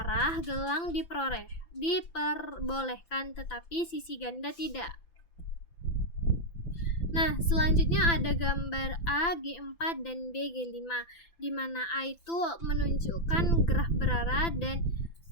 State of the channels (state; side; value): late; right; 5.9 ms